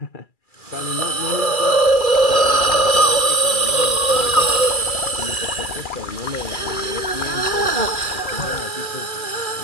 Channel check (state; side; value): late; right; 2.3 ms